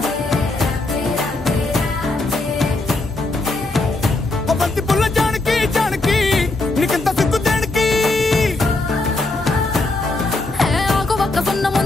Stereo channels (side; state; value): right; quieter; 3.1 dB